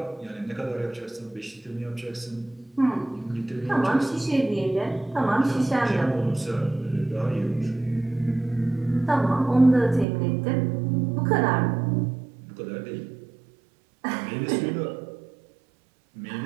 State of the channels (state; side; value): drops out; left; at 10.1 s